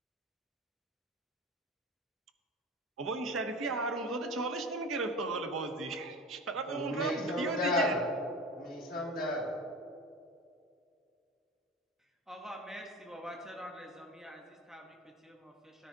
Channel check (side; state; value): both; normal; correlation 0.32